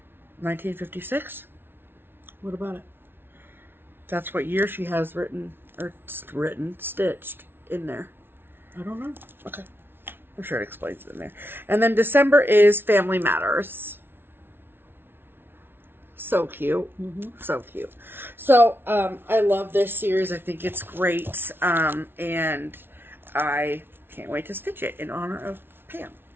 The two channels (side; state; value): left; late; 0.11 ms